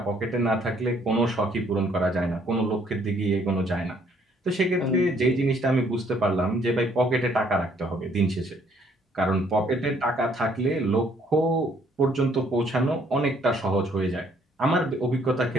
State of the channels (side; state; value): both; normal; correlation 0.65